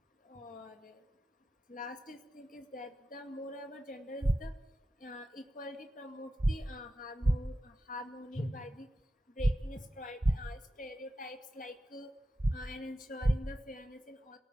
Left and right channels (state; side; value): normal; both; correlation 0.91